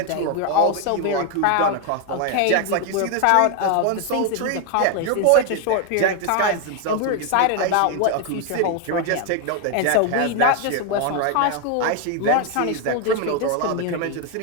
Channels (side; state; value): both; different; correlation 0.01